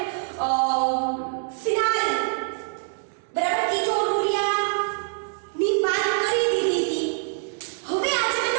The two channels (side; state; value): left; silent; 62 dB below the other